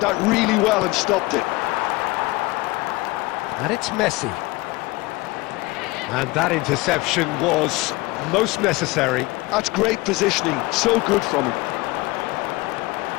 that really well and stopped it. And it's Messi. And that interception was most necessary. That's great positioning, so good from him.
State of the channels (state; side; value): quieter; right; 21.8 dB